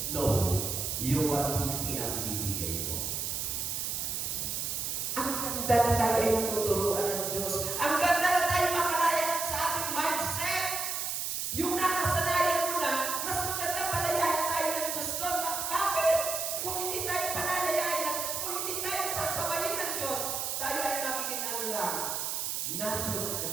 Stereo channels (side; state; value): right; noise; hiss, 2 dB below the sound